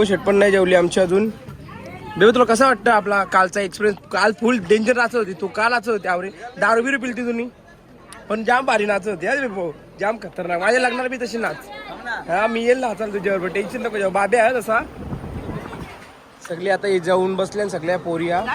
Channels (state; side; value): identical; both; correlation 1.00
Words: शेट पण नाही जेवली आमची अजून. बेबो तुला कसं वाटतं आपला कालचा एक्सपिरियन्स. काल फुल डेंजर नाचत होती तू. काल नाचत होती आवरे. दारू बिरू पिलती तुम्ही पण जाम भारी नाचत होती. अरे बेबो जाम खतरनाक. माझ्या लग्नाला बी तशी नाच. हा मी येईल नाचाल तुझ्यावर. टेन्शन नको जेव्हा. बाबे आहे तसा. सगळी आता जाऊन बसल्या सगळ्या पोरिया.